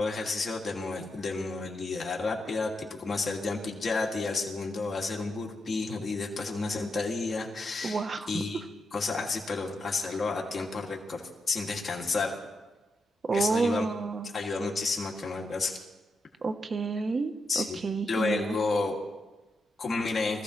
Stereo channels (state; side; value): normal; both; correlation 0.84